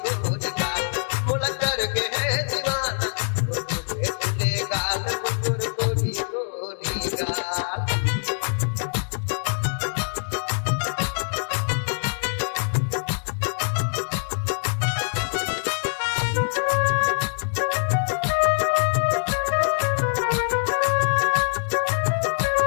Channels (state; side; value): silent; right; 62 dB below the other